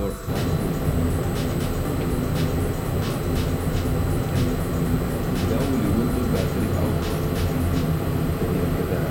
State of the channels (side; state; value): both; identical; correlation 1.00